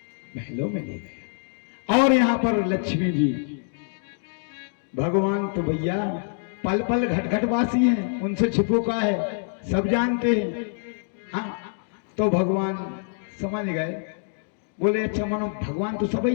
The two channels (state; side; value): silent; right; digital silence